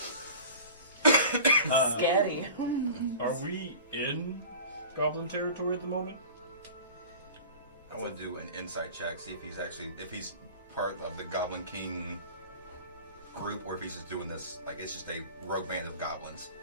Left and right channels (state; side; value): inverted; both; correlation -0.38